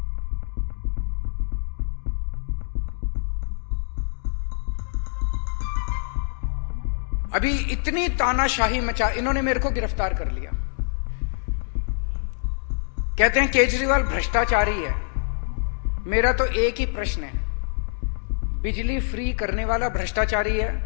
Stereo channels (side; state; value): right; silent; digital silence